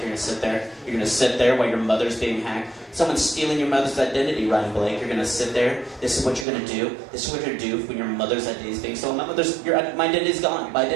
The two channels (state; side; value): drops out; left; at 6.5 s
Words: going to sit there. You're going to sit there while your mother's being hacked. Someone's stealing your mother's identity, Ryan Blake. You're going to sit there. This is what you're going to do. This is what you're going to do when your mother's identity is being stolen. My identity's gone. My